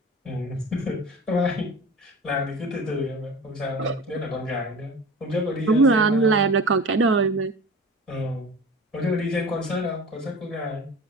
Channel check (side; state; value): both; normal; correlation 0.36